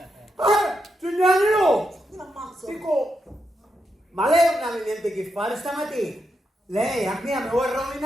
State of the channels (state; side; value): normal; both; correlation 0.84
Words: Signora Neruzza! Ti ammazzo. Dico, ma lei non aveva niente che fare stamattina? Lei a me mi vuole